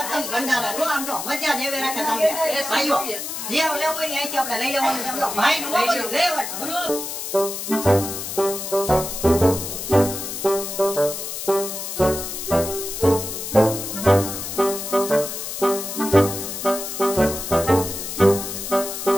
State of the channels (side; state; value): left; noise; hiss, 6 dB below the sound